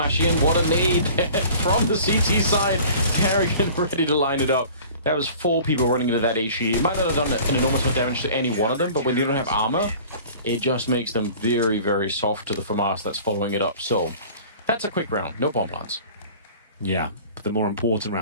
in. What a nade from the CT side. Harrigan ready to line it up. That was 4 people running into that HE. It might not have done an enormous amount of damage to any one of them, but when they don't have armor, it just makes them very, very soft to the FAMAS that's following it up. So, that's a quick round. No bomb plants. Yeah, but the more important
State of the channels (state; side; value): inverted; both; correlation -0.45